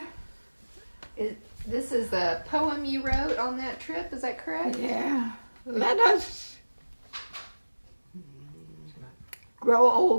This is a poem you wrote on that trip, is that correct? Yeah. Let us grow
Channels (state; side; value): inverted; both; correlation -1.00